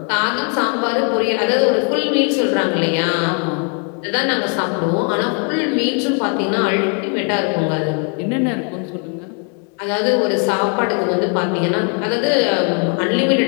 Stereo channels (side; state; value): right; quieter; 38.9 dB